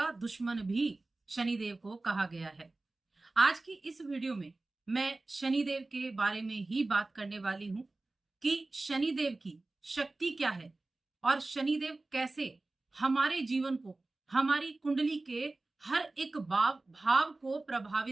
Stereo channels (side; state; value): left; quieter; 3.1 dB